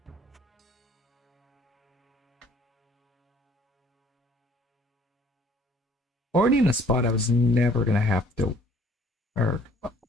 Already in a spot I was never gonna have to, or it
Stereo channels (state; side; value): normal; both; correlation 0.58